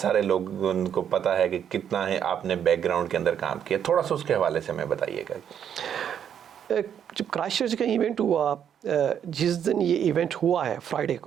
सारे लोगों को पता है कि कितना है आपने बैकग्राउंड के अंदर काम किया। थोड़ा सा उसके हवाले से हमें बताइएगा। जब क्राइस्टचर्च का इवेंट हुआ, जिस दिन ये इवेंट हुआ है फ्राइडे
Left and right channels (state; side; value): quieter; left; 8.8 dB